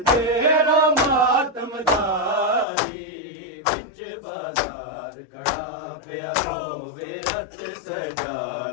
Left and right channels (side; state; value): right; drops out; at 2.7 s